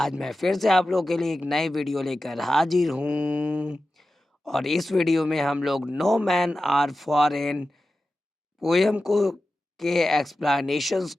मैं फिर से आप लोगों के लिए एक नई वीडियो लेकर हाजिर हूँ। और इस वीडियो में हम लोग no man are foreign poem को के एक्सप्लेनेशंस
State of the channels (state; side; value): normal; both; correlation 0.93